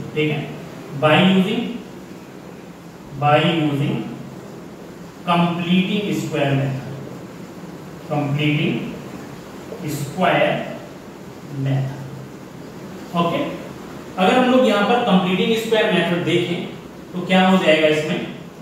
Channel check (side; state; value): both; identical; correlation 1.00